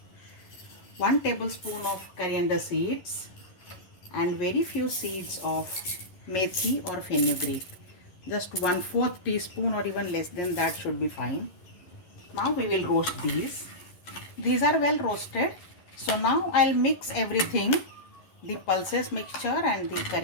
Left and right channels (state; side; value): late; right; 11 ms